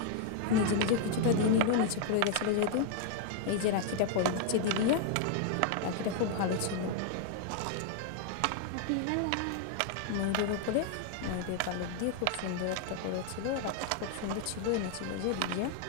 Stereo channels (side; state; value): both; different; correlation 0.00